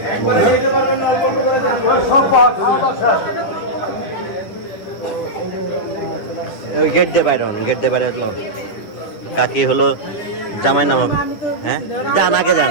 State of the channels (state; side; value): late; right; 10 ms